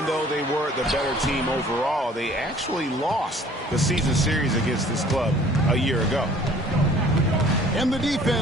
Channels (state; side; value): normal; both; correlation 0.53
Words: though they were the better team overall, they actually lost the season series against this club a year ago. And the